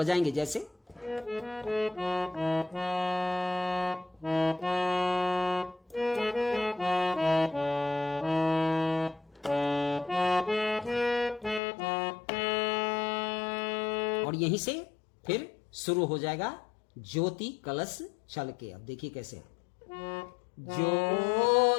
जैसे और यहीं से फिर शुरू हो जाएगा ज्योति कलश छल के। अब देखिए कैसे।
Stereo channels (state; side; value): drops out; right; at 11.6 s